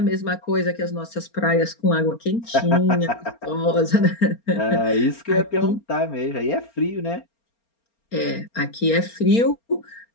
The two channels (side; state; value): right; late; 4.3 ms